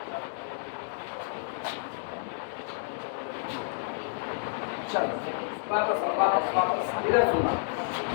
चलो वापस इधर सुनना।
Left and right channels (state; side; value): silent; right; digital silence